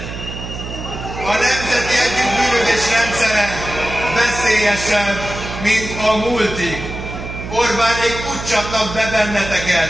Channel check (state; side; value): noise; right; hum, 9 dB below the sound